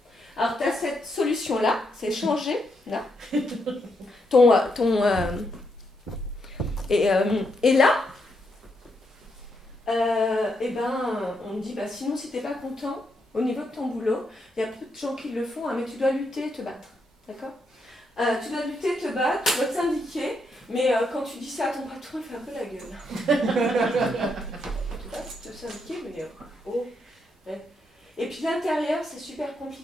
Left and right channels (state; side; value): normal; both; correlation 0.79